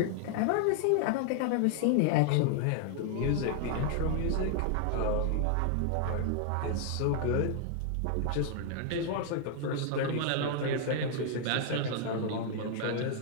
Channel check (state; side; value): different; both; correlation 0.00